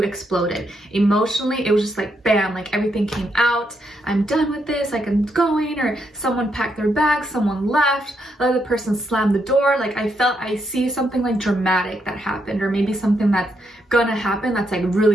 exploded. Emotionally, it was just like bam, like everything came out. I'm done with this, like I'm going. Or someone packed their bags, someone left, the other person slammed the door. Like I see something like dramatic that happened, or maybe something that's gonna happen that's like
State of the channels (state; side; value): normal; both; correlation 0.79